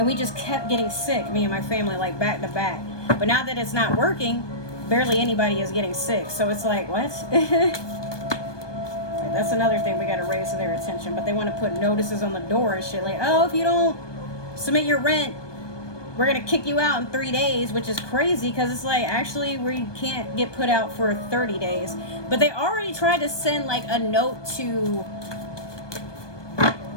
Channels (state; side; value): late; right; 1.2 ms